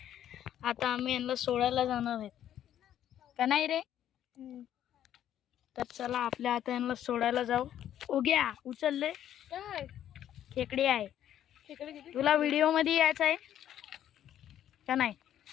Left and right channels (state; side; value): quieter; right; 11.0 dB